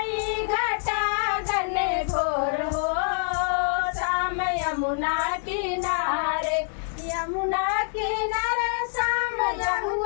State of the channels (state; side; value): silent; right; 61 dB below the other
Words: घटा घने घोर हो शाम यमुना किनारे, यमुना किनारे शाम